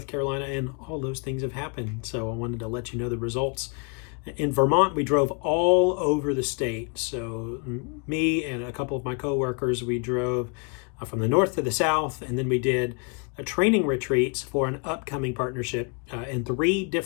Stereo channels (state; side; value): quieter; right; 36.0 dB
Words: Carolina, and all those things have happened. So I wanted to let you know the results. In Vermont, we drove all over the state. So me and a couple of my coworkers, we drove from the north to the south, and then we did training retreats for an upcoming partnership in 3